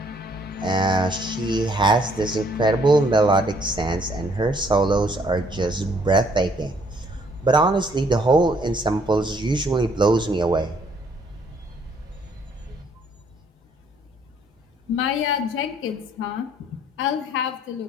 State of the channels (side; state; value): both; normal; correlation 0.64